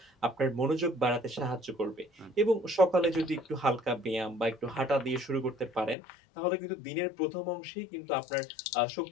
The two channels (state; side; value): drops out; right; at 6.0 s